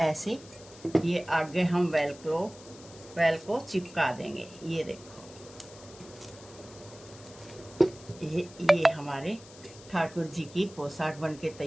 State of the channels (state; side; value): noise; left; hiss, 20 dB below the sound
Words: ऐसे ये आगे हम वेल को चिपका देंगे। ये देखो ये हमारे ठाकुर जी की पोशाक बनके